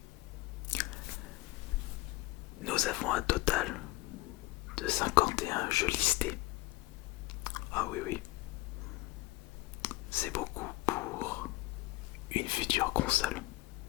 nous avons un total de 51 jeux listés. Ah oui, c'est beaucoup pour une future console.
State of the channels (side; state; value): right; quieter; 20.6 dB